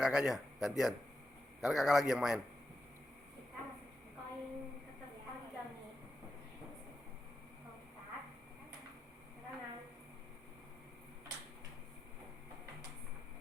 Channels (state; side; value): normal; both; correlation 0.88